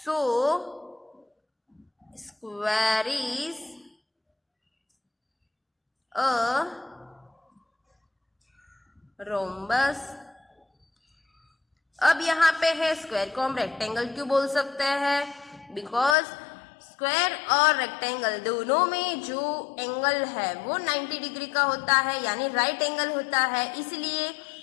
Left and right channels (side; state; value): right; drops out; at 16.2 s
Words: square is a rhombus. अब यहाँ पे है स्क्वायर को हम रेक्टेंगल क्यों बोल सकते हैं? बिकॉज स्क्वायर और रेक्टेंगल दोनों में जो एंगल है वो 90 डिग्री का होता है, यानी राइट एंगल होता है, इसलिए।